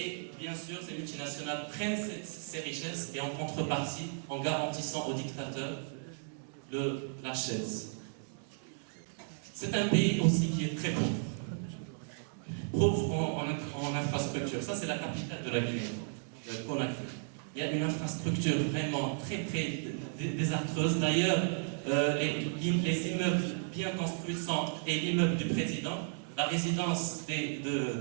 bien sûr, ces multinationales prennent ces richesses et en contrepartie, en garantissant aux dictateurs de la chaise. C'est un pays aussi qui est très pauvre. Pauvre en infrastructure. Ça, c'est la capitale de la Guinée, Conakry. Il y a une infrastructure vraiment très désastreuse. D'ailleurs, les immeubles bien construits et l'immeuble du président, la résidence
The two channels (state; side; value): silent; left; digital silence